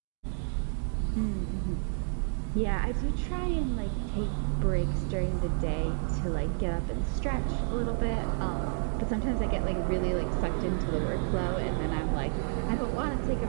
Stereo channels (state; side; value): silent; left; 57 dB below the other